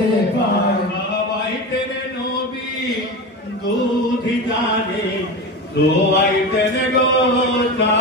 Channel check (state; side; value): normal; both; correlation 0.24